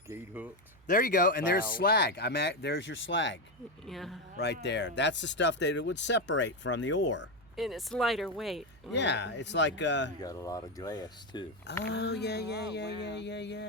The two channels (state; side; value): noise; right; hum, 27 dB below the sound